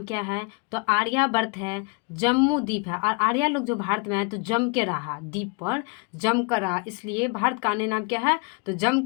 क्या है, तो आर्यावर्त है। जम्मू द्वीप है और आर्या लोग जो भारत में आए तो जम के रहा, द्वीप पर जम कर रहा, इसलिए भारत का अन्य नाम क्या है, तो जम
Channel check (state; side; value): quieter; right; 32.2 dB